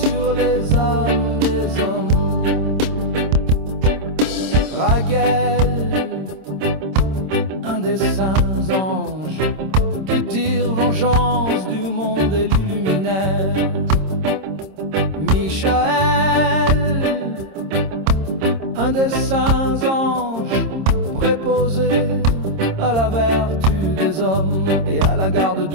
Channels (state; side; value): late; left; 26 ms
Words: les âmes des hommes. Raguel, un des saints anges qui tire vengeance du monde et l'illuminaire. Michael, un des saints anges préposé à la vertu des hommes et à la garde